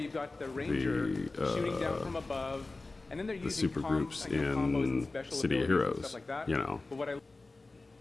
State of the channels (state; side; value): quieter; right; 3.3 dB